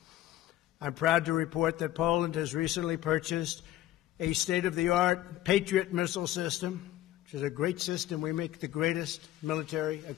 I'm proud to report that Poland has recently purchased a state-of-the-art Patriot missile system, which is a great system. We make the greatest military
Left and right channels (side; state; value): right; quieter; 13.8 dB